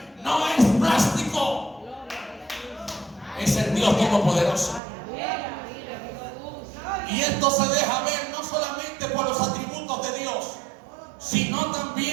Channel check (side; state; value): left; drops out; at 4.8 s